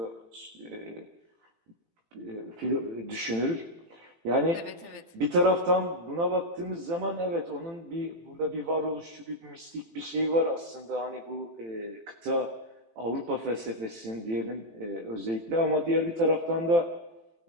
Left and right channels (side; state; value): left; late; 18 ms